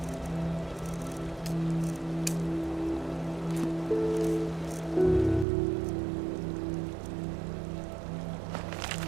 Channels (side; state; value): left; drops out; at 5.5 s